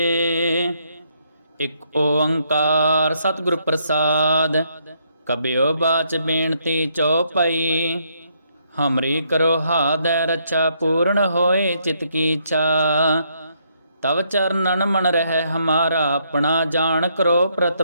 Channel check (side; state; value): both; inverted; correlation -0.73